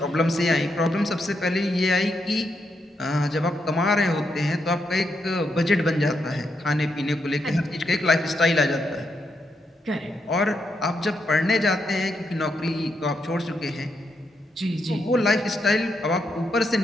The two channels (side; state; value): both; normal; correlation 0.81